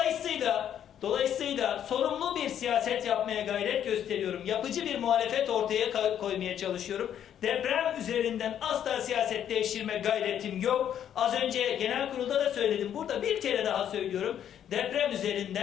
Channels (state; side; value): quieter; right; 9.8 dB